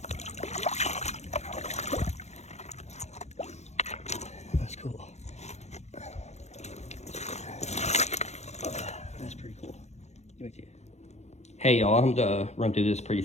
That's cool. That's pretty cool. Get back to you. Hey y'all, I'm gonna run through this pretty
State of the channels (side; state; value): right; late; 0.32 ms